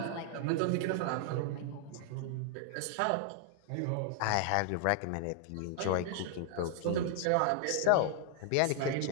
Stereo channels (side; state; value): both; different; correlation -0.01